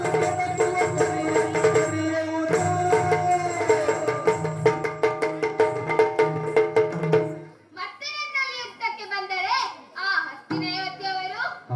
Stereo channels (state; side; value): identical; both; correlation 1.00